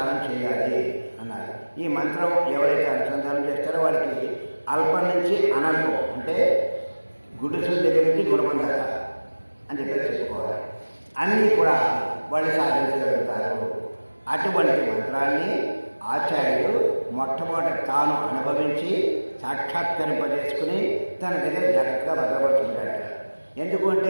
చేయాలి అన్నారు. ఈ మంత్రం ఎవరైతే అనుసంధానం చేస్తారో వాళ్ళకి అల్పం నుంచి అనల్పం, అంటే గుడిసుల దగ్గర నుంచి గుణపం దాకా అని చెప్పి చెప్పుకోవాలి. అన్నీ కూడా వాళ్ళు సాధించగలుగుతారు. అటువంటి మంత్రాన్ని ఆచార్యుడు మొట్టమొదటి తాను అనుభవించి సాక్షాత్కరింపజేసుకుని తన దగ్గర జాగ్రత్తగా భద్రపరుచుకుంటాడు.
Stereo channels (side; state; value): both; inverted; correlation -1.00